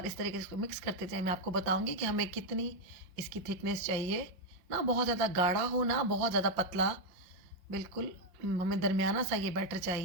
इस तरीके से इसको मिक्स करते जाएँ। मैं आपको बताऊँगी कि हमें कितनी इसकी थिकनेस चाहिए, ना बहुत ज़्यादा गाढ़ा हो ना बहुत ज़्यादा पतला, बिल्कुल हमें दरमियाना सा ये बैटर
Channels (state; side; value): late; left; 5.9 ms